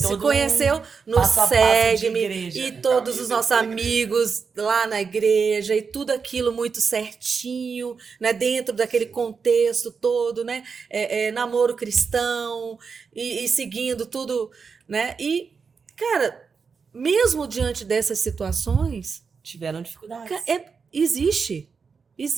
todo conheceu no passo a passo de SEGM igreja. e todos os nossos amigos lá na igreja e tudo aquilo muito certinho, né? Dentro daquele contexto todo, né? Namoro cristão e seguindo tudo, né? E, cara, mesmo diante dessas situações, Tiveram dificuldades.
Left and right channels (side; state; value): left; quieter; 5.5 dB